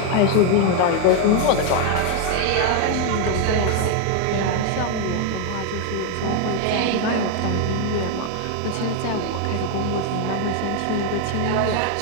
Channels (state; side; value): different; both; correlation 0.01